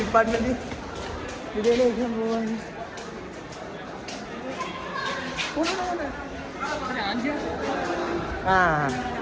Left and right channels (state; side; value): identical; both; correlation 1.00